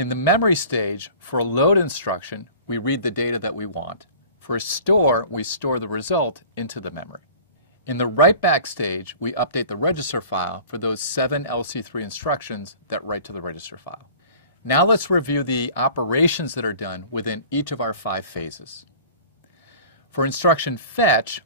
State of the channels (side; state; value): both; inverted; correlation -0.44